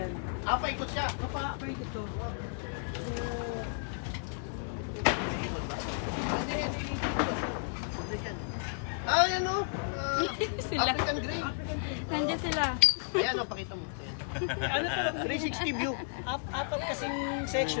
Paikot siya. Paikot to. Yan o. Sila. African Grey. Nandiyan sila. Ayan o, pakita mo. Ayan. Ano to? 360 view. Apat kasing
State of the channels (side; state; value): right; silent; digital silence